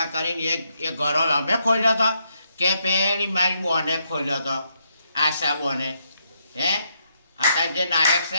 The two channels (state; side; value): inverted; both; correlation -0.78